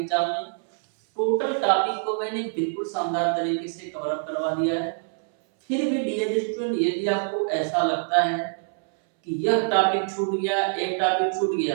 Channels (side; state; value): left; silent; 62 dB below the other